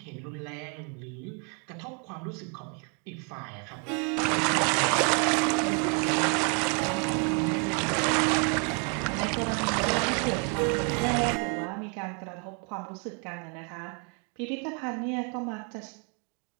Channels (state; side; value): quieter; left; 37.4 dB